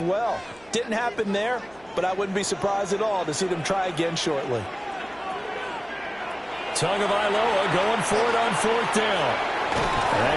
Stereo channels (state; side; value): noise; right; hum, 28 dB below the sound